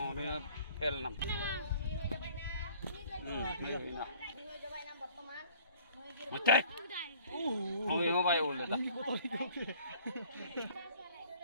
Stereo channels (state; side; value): inverted; both; correlation -0.54